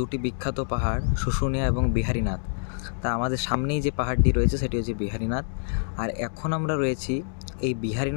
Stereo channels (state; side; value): silent; right; digital silence